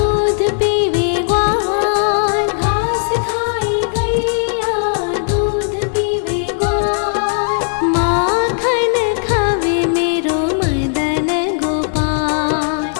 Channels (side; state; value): right; silent; 56 dB below the other